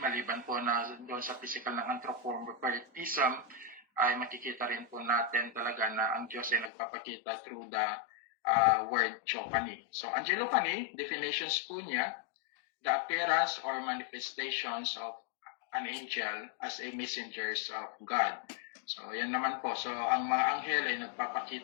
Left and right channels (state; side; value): drops out; right; at 6.7 s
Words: Maliban po na doon sa physical ng anthropomorphism, ay makikita rin po natin talaga na ang Diyos ay nagpapakita through the word theophany. So, angelophany, definitions po niya, the appearance or manifestations of an angel as a messengers of God. So, yan naman po. So, ang mga anghel ay